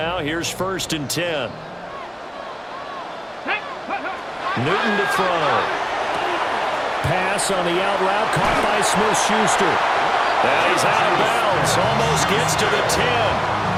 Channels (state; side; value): identical; both; correlation 1.00